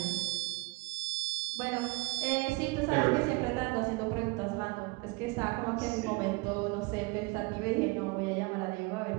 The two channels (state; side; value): quieter; left; 25.8 dB